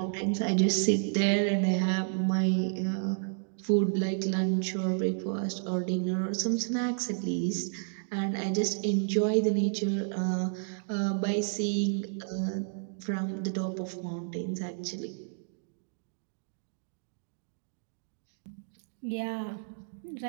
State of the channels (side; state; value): left; silent; digital silence